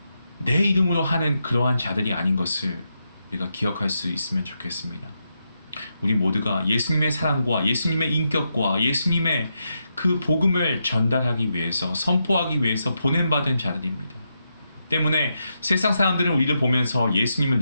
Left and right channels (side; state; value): both; inverted; correlation -0.84